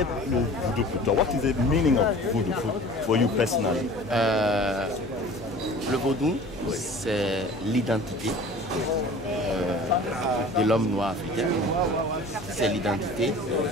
le Voodoo pour toi? What is the meaning of Voodoo for you personally? Le Vodou, c'est l'identité de l'homme noir africain. C'est l'identité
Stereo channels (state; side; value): noise; left; hum, 19 dB below the sound